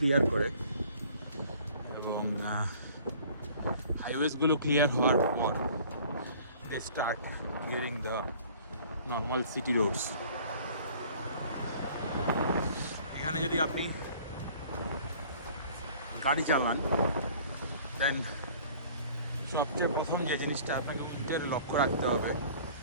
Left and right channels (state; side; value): inverted; both; correlation -0.51